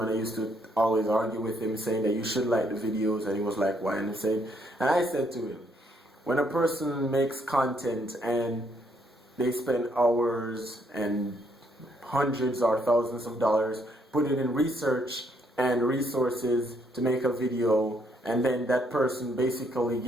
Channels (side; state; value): both; normal; correlation 0.71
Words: And I used to always argue with him, saying that you should like the videos. And he was like, why? And I said to him, when a person makes content and they spend hours and hundreds or thousands of dollars, put it in research and resources to make a video, and then that person basically